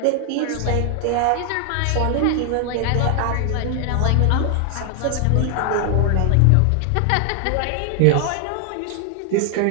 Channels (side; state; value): both; different; correlation 0.00